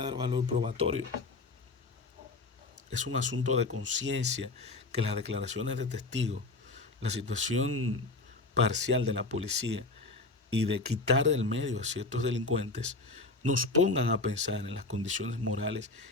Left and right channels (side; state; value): right; quieter; 3.3 dB